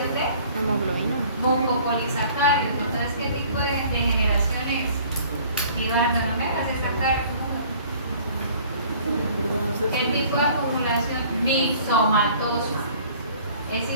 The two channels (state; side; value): inverted; both; correlation -0.52